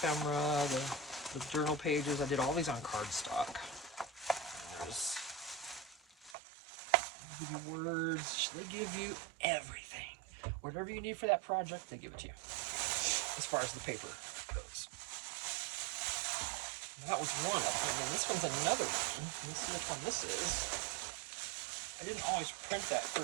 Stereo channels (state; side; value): drops out; left; at 6.4 s